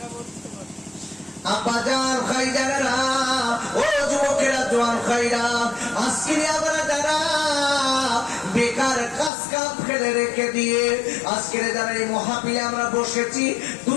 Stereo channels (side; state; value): right; drops out; at 9.3 s